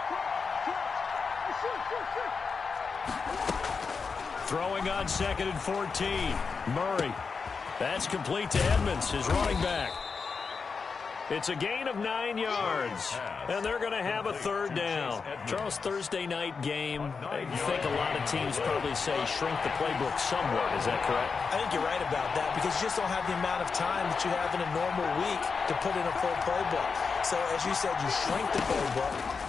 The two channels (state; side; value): quieter; right; 5.1 dB